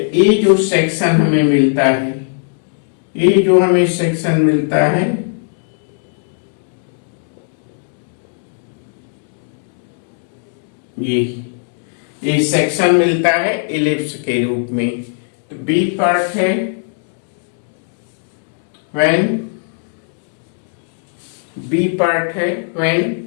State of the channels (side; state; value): right; silent; 67 dB below the other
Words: ये जो सेक्शन हमें मिलता है, ये जो हमें सेक्शन मिलता है ये सेक्शन मिलता है इलिप्स के रूप में। तो बी पार्ट है when